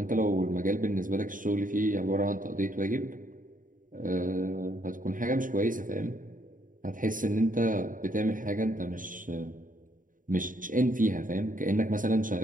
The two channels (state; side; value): late; left; 0.39 ms